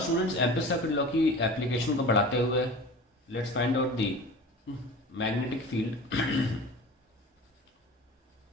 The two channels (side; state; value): both; normal; correlation 0.37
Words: ampere circuit law की application को बढ़ाते हुए let's find out the magnetic field